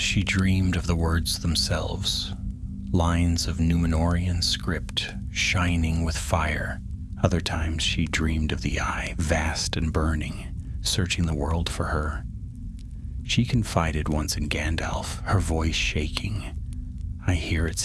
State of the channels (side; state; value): both; identical; correlation 1.00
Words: dreamed of the words themselves, lines of Númenórean script shining with fire. Other times she dreamed of the eye, vast and burning, searching the world for her. She confided once in Gandalf, her voice shaking. I hear it